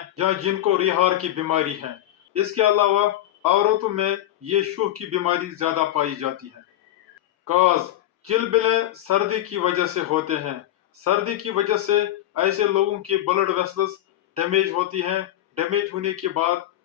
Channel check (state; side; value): quieter; right; 13.4 dB